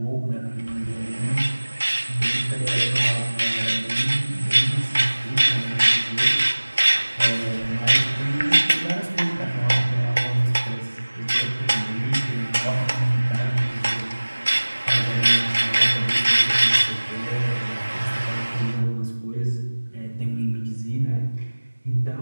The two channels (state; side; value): inverted; both; correlation -1.00